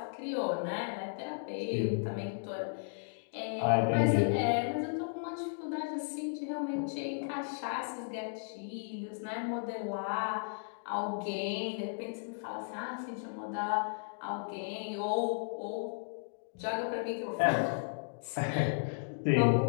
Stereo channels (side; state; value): right; silent; digital silence